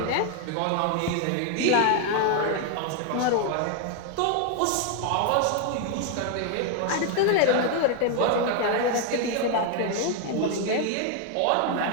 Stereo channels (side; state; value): both; different; correlation 0.01